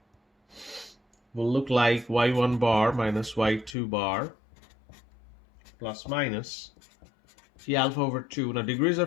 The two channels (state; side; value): drops out; right; at 3.8 s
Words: will look like y1 bar minus y2 bar plus minus t alpha over 2. Now degrees